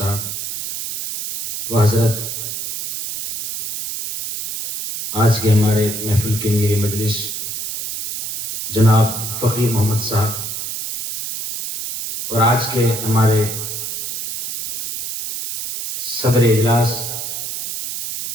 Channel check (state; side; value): noise; right; hiss, 6 dB below the sound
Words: و حضرت آج کے ہمارے محفل کے میرے مجلس جناب فقیر محمد صاحب اور آج کے ہمارے صدر اجلاس